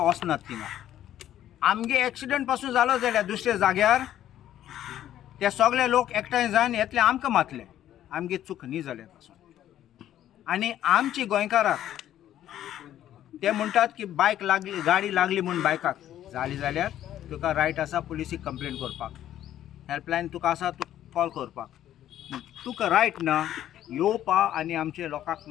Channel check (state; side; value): quieter; right; 11.9 dB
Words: वचनात थिंगा. आमगे एक्सिडेंट पासून जालो जाल्यार दुसऱ्या जाग्यार ते सगळे लोक एकठांय जावन येतले आमकां मातले आमगे चूक न्ही जाल्या पासून. आनी आमची गोंयकाराक ते म्हणटात की बायक लागली गाडी लागली म्हूण बायकाक जाली जाल्यार तुका रायट आसा पुलिसीक कंप्लेन करपाक. हेल्पलायन तुका आसा तूं कॉल करपाक. तुका रायट ना येवपा आनी आमचे लोकांक